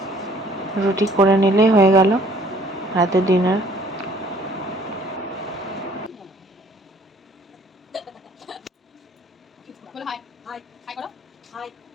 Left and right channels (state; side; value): normal; both; correlation 0.58